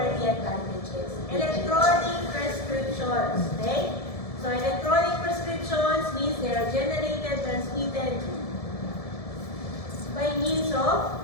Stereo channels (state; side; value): late; right; 1.7 ms